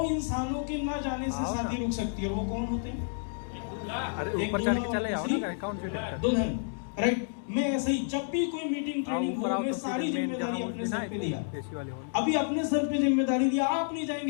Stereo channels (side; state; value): right; silent; digital silence